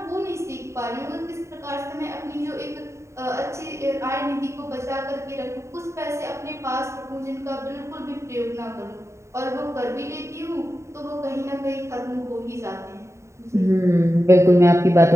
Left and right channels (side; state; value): left; late; 0.14 ms